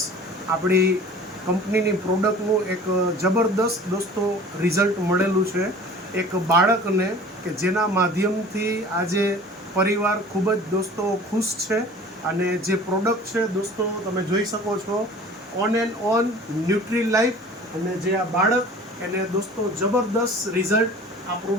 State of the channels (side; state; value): both; normal; correlation 0.44